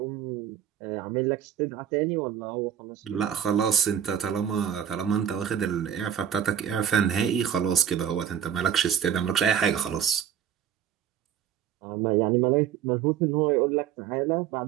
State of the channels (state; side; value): quieter; left; 9.1 dB